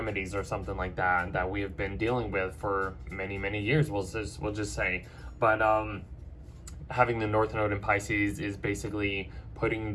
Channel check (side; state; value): both; identical; correlation 1.00